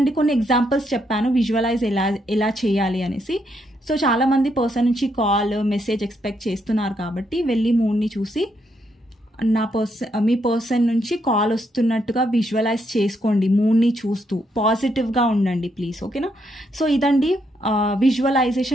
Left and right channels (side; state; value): both; normal; correlation 0.77